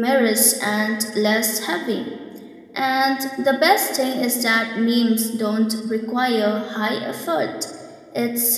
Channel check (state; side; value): identical; both; correlation 1.00